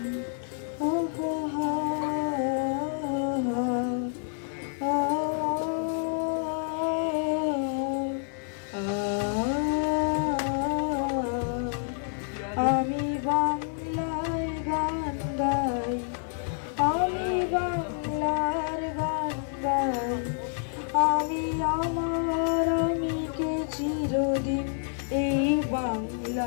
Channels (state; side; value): silent; right; 58 dB below the other